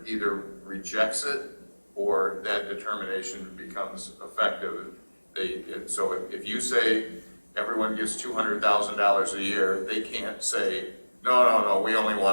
either rejects it or that determination becomes effective. So if you say everyone gets $200,000 a year, they can't say, no, we only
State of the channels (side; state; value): both; inverted; correlation -1.00